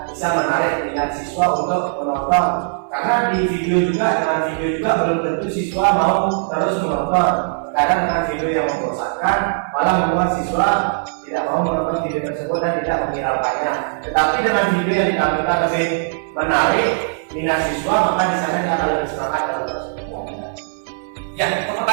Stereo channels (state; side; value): silent; left; 60 dB below the other